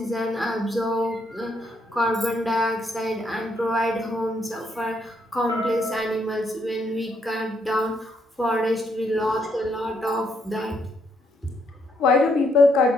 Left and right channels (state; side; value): normal; both; correlation 0.74